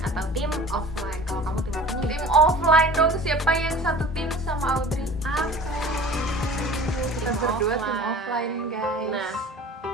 atau tim offline. Kalau kamu tim apa nih? Tim offline dong, siapa yang satu tim sama Audrey? Aku. Kita berdua tim offline, guys. Nah,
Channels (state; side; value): normal; both; correlation 0.43